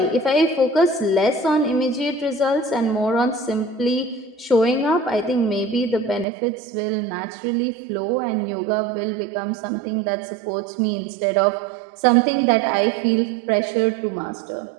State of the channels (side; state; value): left; drops out; at 6.2 s